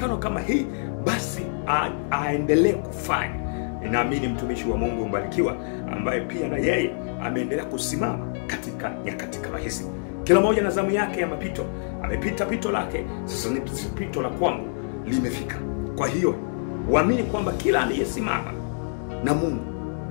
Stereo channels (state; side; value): silent; right; digital silence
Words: kama hii, basi aendelee kufanya. Ninaamini mtumishi wa Mungu mbarikiwa ambaye pia na yeye ameendelea kusimama katika nyakati kama hizi. Kila mmoja na zamu yake ya mapito. Amepita pito lake, sasa ni pito la kwangu limefika. Kwa hiyo uamini kwamba kila aliyesimama na Mungu